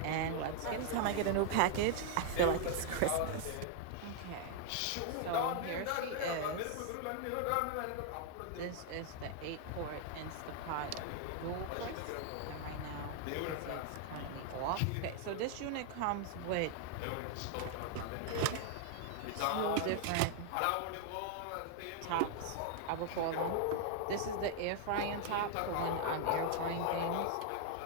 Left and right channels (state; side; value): different; both; correlation 0.00